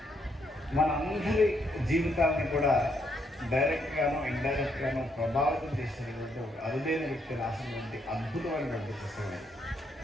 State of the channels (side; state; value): both; normal; correlation 0.75